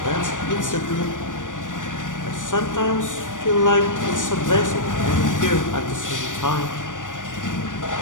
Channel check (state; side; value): late; right; 0.87 ms